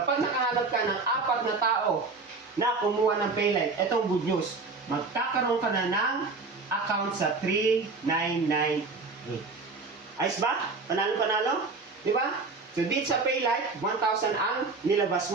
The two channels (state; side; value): quieter; left; 4.0 dB